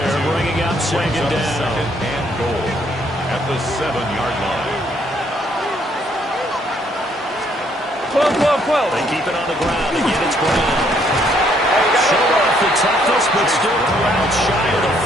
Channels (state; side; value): normal; both; correlation 0.68